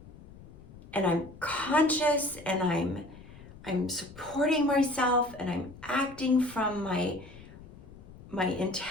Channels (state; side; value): noise; left; rumble, 19 dB below the sound